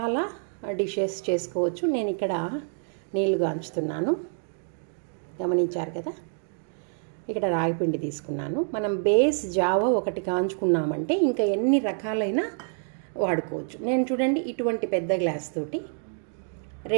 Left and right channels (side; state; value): left; silent; 56 dB below the other